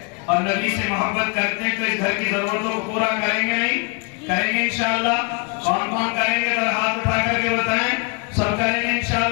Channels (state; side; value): quieter; right; 32.8 dB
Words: اور نبی سے محبت کرتے ہیں تو اس گھر کی ضرورتوں کو پورا کریں گے نہیں؟ کریں گے انشاءاللہ۔ کون کون کریں گے ذرا ہاتھ اٹھا کر کے بتائیں۔ سب کریں گے